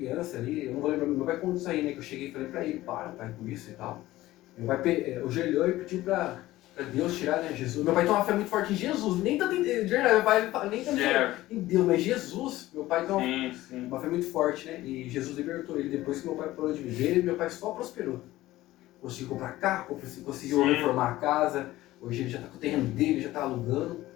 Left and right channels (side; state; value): right; quieter; 16.5 dB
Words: ali, eu não vou lembrar, meu pai contou isso aí, né? Que eu cheguei e falei pra ele, para, pai, com isso e tal. Meu pai ajoelhou e pediu pra Deus tirar, né, Jesus. Meu pai tem uma fé muito forte em Jesus, nem tanto de verdade, meu pai nem tanto em Deus, mas Jesus, meu pai tem uma fé muito forte, né? E Jesus libertou ele depois que meu pai parou de viver, meu pai só prosperou. Conseguiu comprar carro, conseguiu reformar a casa, hoje ele já tá com o terreno dele, já tá alugando,